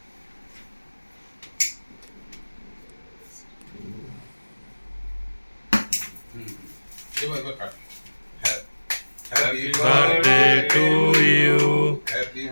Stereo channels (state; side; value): inverted; both; correlation -1.00